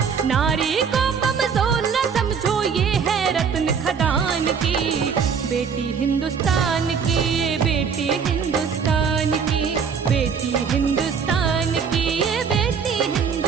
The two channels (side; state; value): left; quieter; 6.4 dB